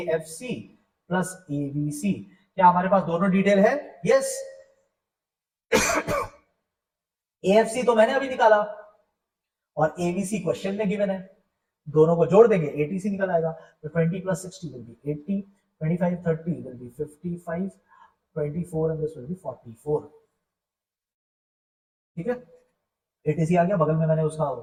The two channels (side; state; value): both; identical; correlation 1.00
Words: plus ABC. क्या हमारे पास दोनों डिटेल है? यस। एएफसी तो मैंने अभी निकाला और एबीसी क्वेश्चन में गिवन है, दोनों को जोड़ देंगे एटीसी निकल आएगा। तो 20 plus 60 will be 80, 25 30 will be 55, 24 and this will B 44। ठीक है, एटीसी आ गया, बगल में मैंने उसका